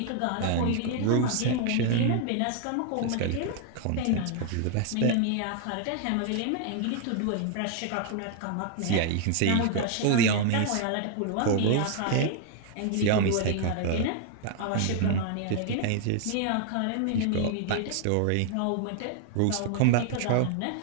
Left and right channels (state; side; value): different; both; correlation 0.00